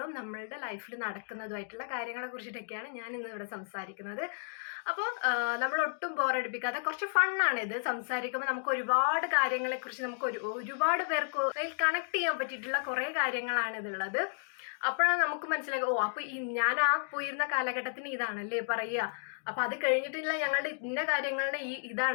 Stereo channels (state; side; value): silent; right; digital silence